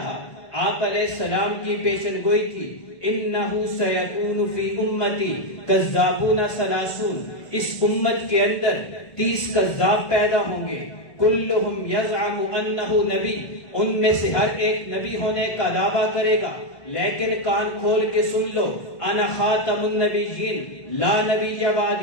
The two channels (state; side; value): late; right; 2.0 ms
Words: آپ علیہ السلام کی پیشن گوئی کی انہو سیکون فی امتی کذابون ثلاثون، اس امت کے اندر 30 کذاب پیدا ہوں گے، کلہم یزعم انہ نبی، ان میں سے ہر ایک نبی ہونے کا دعویٰ کرے گا، لیکن کان کھول کے سن لو انا خاتم النبیین لا نبی